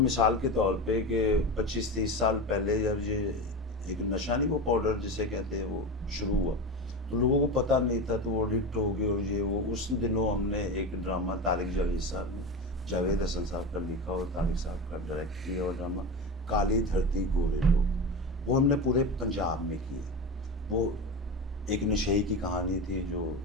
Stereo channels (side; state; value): both; normal; correlation 0.23